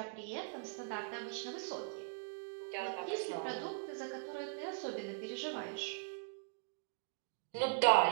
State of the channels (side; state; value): left; quieter; 36.2 dB